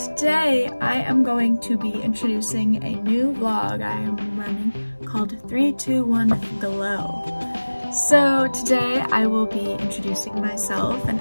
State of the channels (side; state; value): both; inverted; correlation -1.00